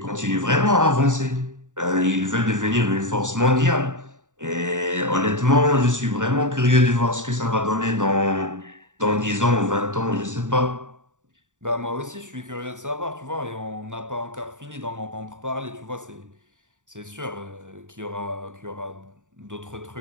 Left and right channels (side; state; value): left; late; 0.86 ms